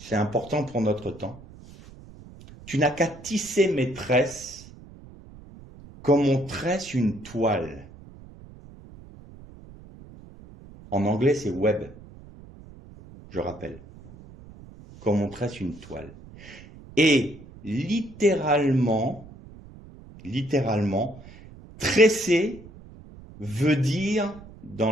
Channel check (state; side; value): noise; right; rumble, 19 dB below the sound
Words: important pour notre temps. Tu n'as qu'à tisser mes tresses comme on tresse une toile. En anglais, c'est web. Je rappelle. Comme on tresse une toile. Et littéralement, tresser veut dire,